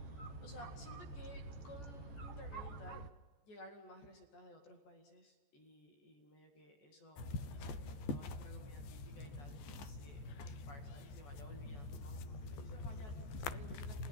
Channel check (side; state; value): right; late; 14 ms